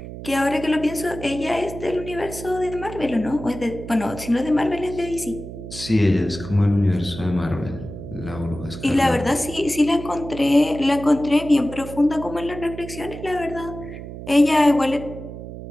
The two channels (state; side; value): noise; right; hum, 11 dB below the sound